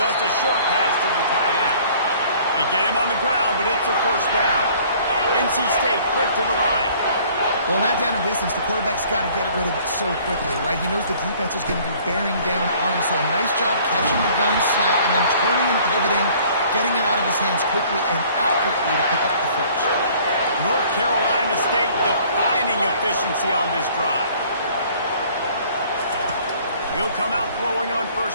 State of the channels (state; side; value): inverted; both; correlation -0.55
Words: Just a short pass to the tight end. They get him on the ground, but it's a first down. NC State quick to the line. Well, that down and distance, the quarterback's got to get rid of it so quickly, right? He knows the defense is going to be bearing down on him, so a nice job catching the gun snap and then turning and pivoting, getting it out of his hands quickly and accurately to pick up the first. North Carolina State defining efficiency on this drive. He'll come out throwing on